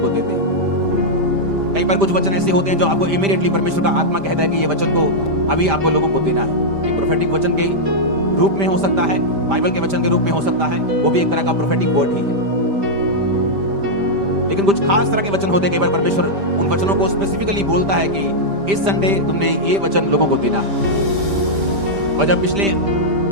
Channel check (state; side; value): late; left; 5.0 ms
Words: को देते हैं। कई बार कुछ वचन ऐसे होते हैं जो आपको इमीडिएटली परमेश्वर का आत्मा कहता है कि ये वचन को अभी आपको लोगों को देना है। एक प्रोफेटिक वचन के रूप में हो सकता है, बाइबल के वचन के रूप में हो सकता है, वो भी एक तरह का प्रोफेटिक वर्ड ही है। लेकिन कुछ खास तरह के वचन होते हैं, कई बार परमेश्वर उन वचनों को स्पेसिफिकली बोलता है कि इस संडे तुमने ये वचन लोगों को देना है। और जब पिछले